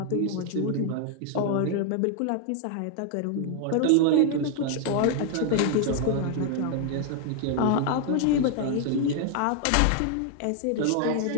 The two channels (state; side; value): different; both; correlation 0.00